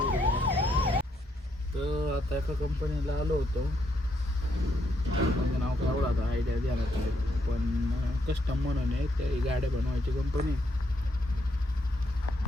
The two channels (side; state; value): both; normal; correlation 0.76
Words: तर आता एका कंपनीला आलो होतो. कंपनीचं नाव काय एवढं आता आयडिया द्यायला नाही, पण कस्टम म्हणून आहे, त्या गाड्या बनवायची कंपनी.